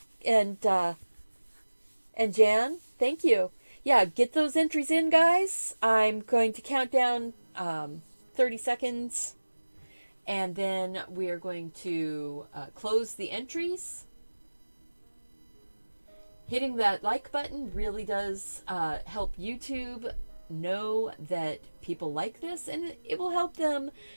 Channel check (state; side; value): inverted; both; correlation -1.00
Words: And Jan, thank you. Yeah, get those entries in, guys. I'm going to count down 30 seconds, and then we are going to close the entries. Hitting that like button really does help YouTube know that people like this, and it will help them.